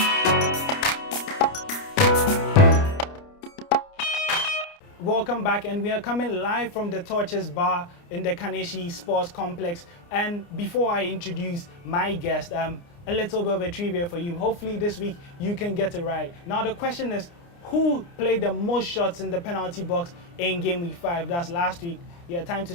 Welcome back, and we are coming live from the Torches Bar in the Kaneshi Sports Complex. And before I introduce my guest, a little bit of a trivia for you. Hopefully this week you can get it right. Now the question is, who played the most shots in the penalty box in game week 5? That's last week. Yeah, time to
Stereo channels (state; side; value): late; right; 29 ms